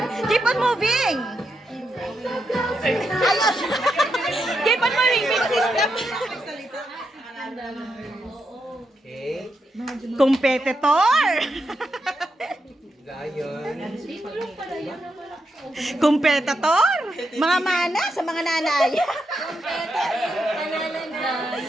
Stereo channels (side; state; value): both; normal; correlation 0.84